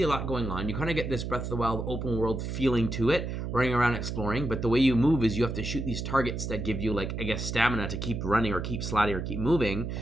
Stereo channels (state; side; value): noise; right; hum, 4 dB below the sound